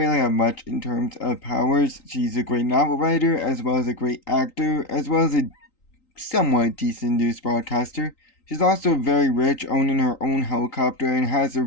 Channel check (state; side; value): late; right; 3.9 ms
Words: have much in terms of powers. She's a great novel writer, as well as a great actor, as well as a somewhat decent news broadcaster. She's also very rich, owning her own helicopter, and has her